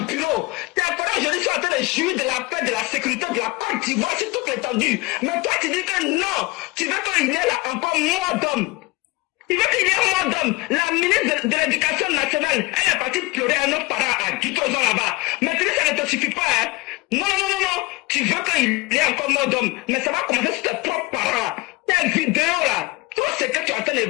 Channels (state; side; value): quieter; right; 22.9 dB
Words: bureau tes parents aujourd'hui sont en train de jouir de la paix de la sécurité de la Côte d'Ivoire c'est tout étendu mais toi tu dis que non tu veux qu'il y ait là encore moins d'hommes. Il veut qu'il y ait un mot d'homme. La ministre de l'Éducation nationale, elle est partie pleurer à nos parents à Guitrozon là-bas. Mais ça ne te suffit pas, hein. Non. Tu veux qu'il y ait encore un mot d'homme. Mais ça va commencer sur tes propres parents. tes vidéos là, tout ce que tu es en train